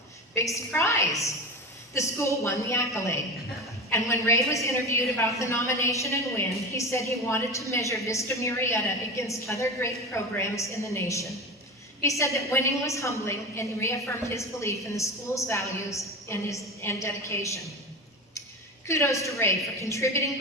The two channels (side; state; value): both; normal; correlation 0.26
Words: Big surprise! The school won the accolade. And when Ray was interviewed about the nomination and win, he said he wanted to measure Vista Murrieta against other great programs in the nation. He said that winning was humbling and reaffirmed his belief in the school's values and dedication. Kudos to Ray for contributing